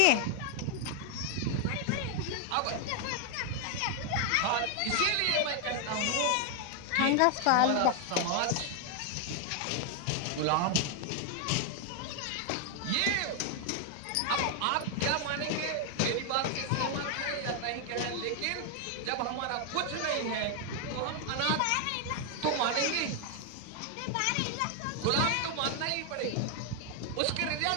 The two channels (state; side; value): different; both; correlation 0.00